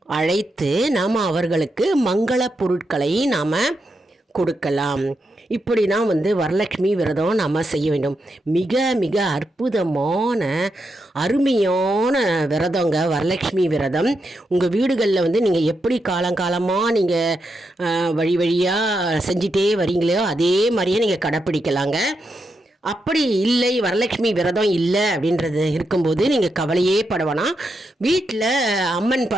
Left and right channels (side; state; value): both; normal; correlation 0.84